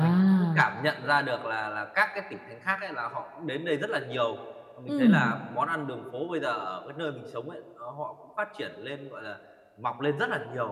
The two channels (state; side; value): identical; both; correlation 1.00